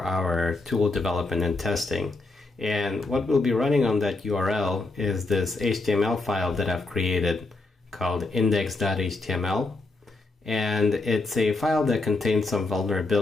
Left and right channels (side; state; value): right; quieter; 3.3 dB